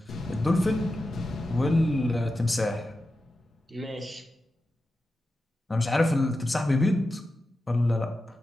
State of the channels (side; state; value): both; normal; correlation 0.91